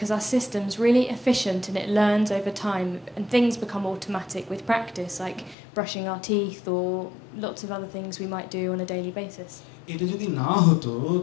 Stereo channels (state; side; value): drops out; right; at 5.6 s